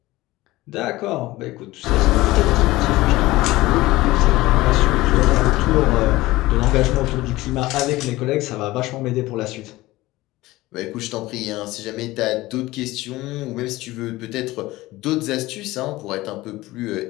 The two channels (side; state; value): right; quieter; 18.5 dB